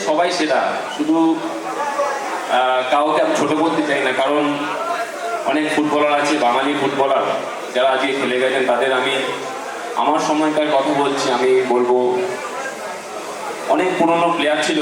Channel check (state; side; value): identical; both; correlation 1.00